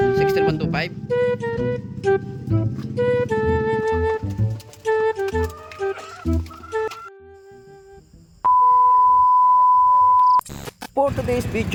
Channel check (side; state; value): both; identical; correlation 1.00